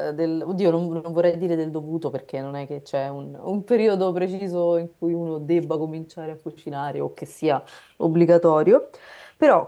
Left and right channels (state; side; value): identical; both; correlation 1.00